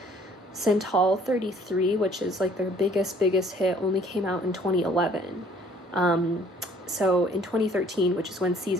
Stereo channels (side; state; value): both; normal; correlation 0.57